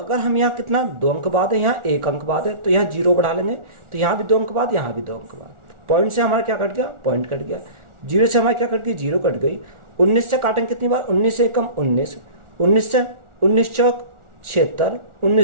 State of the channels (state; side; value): late; left; 1.4 ms